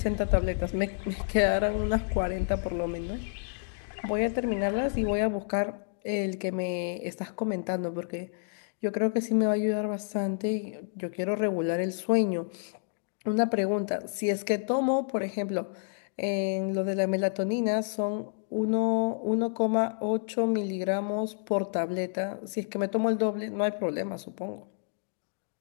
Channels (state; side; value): silent; right; digital silence